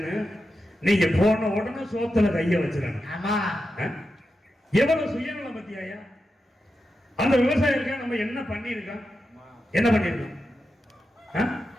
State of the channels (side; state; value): both; normal; correlation 0.89